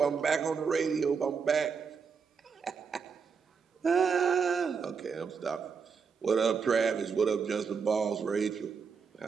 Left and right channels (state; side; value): quieter; left; 5.9 dB